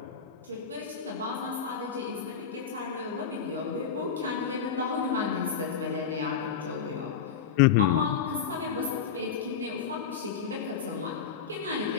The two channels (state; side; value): quieter; right; 7.1 dB